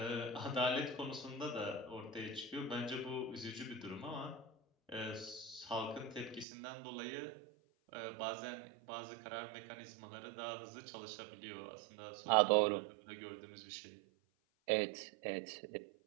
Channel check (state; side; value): drops out; left; at 6.5 s